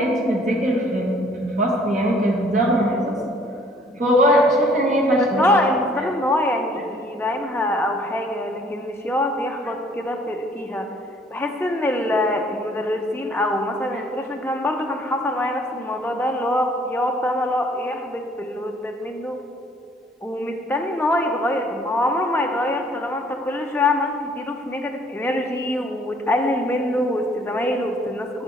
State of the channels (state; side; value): normal; both; correlation 0.59